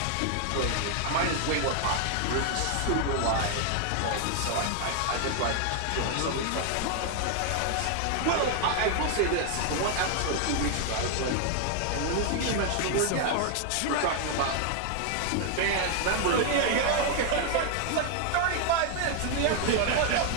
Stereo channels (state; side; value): different; both; correlation 0.00